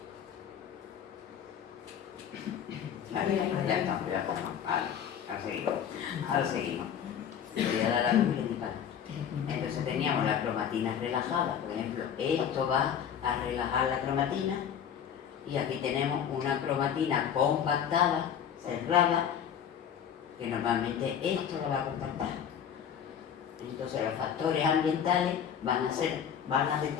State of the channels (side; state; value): right; quieter; 8.6 dB